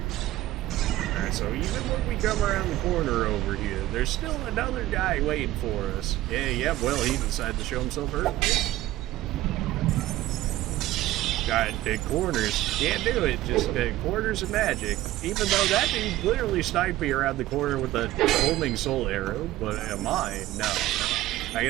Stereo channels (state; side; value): quieter; left; 15.7 dB